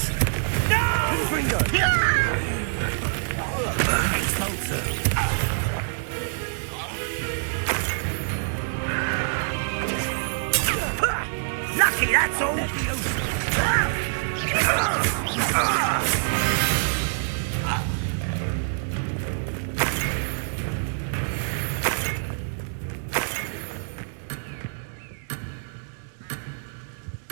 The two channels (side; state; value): left; silent; digital silence